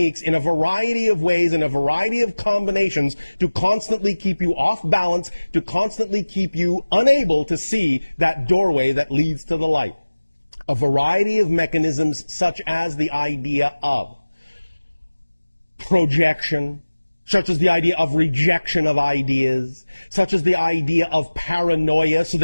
in a variety of ways, in a variety of combinations, to constantly keep you off balance, to constantly keep you unable to see that doorway that leads to the light. A variety of mechanisms, such as the idea of projection, such as the idea of rejection of ideas, such as the idea of paranoia, so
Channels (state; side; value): inverted; both; correlation -1.00